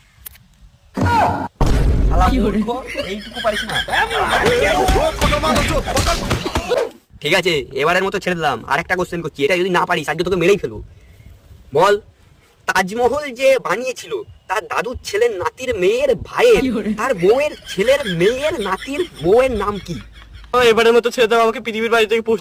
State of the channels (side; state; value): both; identical; correlation 1.00